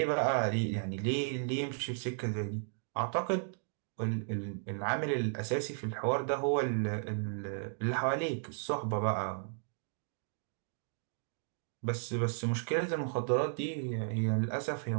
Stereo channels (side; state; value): left; silent; digital silence